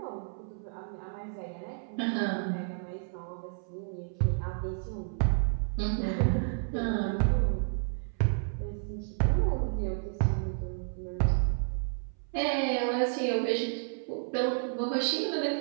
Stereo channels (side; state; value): left; silent; 57 dB below the other